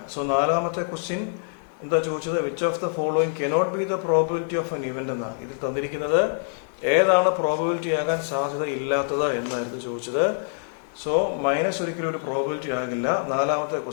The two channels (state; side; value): silent; right; digital silence